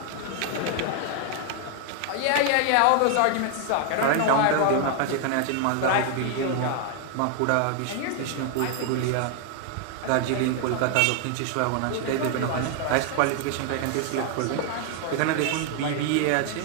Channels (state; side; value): different; both; correlation 0.00